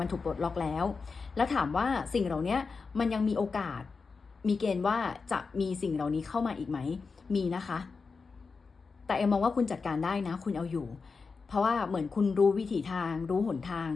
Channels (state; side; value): quieter; right; 4.7 dB